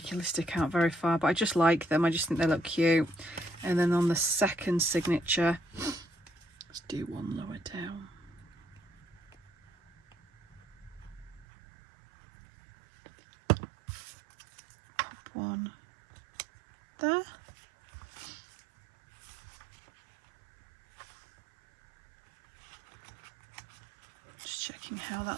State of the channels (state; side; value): drops out; left; at 11.5 s